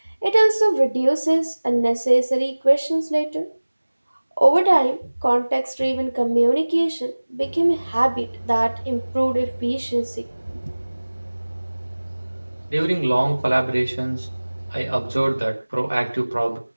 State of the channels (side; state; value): both; inverted; correlation -1.00